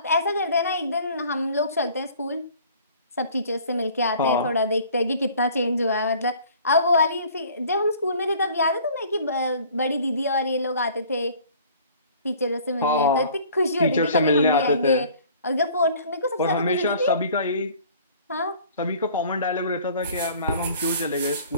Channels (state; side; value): inverted; both; correlation -0.52